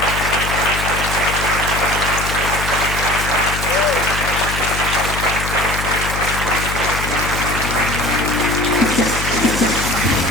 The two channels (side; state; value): left; noise; hum, 5 dB below the sound